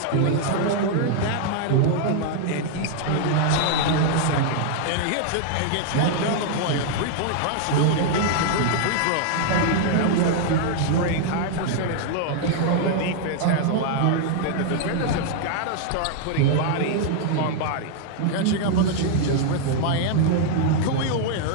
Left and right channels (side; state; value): both; different; correlation 0.00